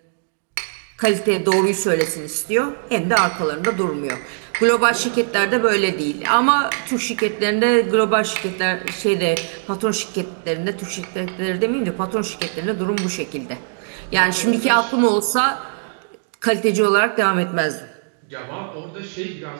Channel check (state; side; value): silent; left; digital silence